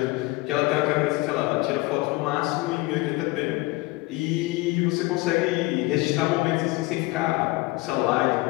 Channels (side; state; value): right; quieter; 22.1 dB